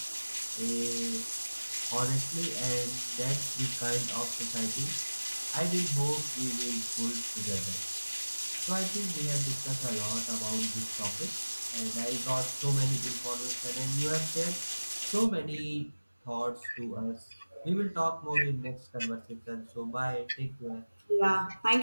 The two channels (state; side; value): inverted; both; correlation -1.00